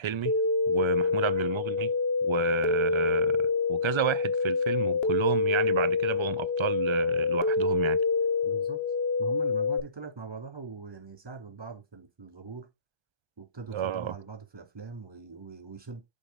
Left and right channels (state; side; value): late; left; 1.3 ms